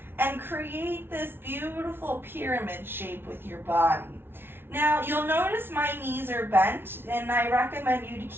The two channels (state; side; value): late; left; 0.11 ms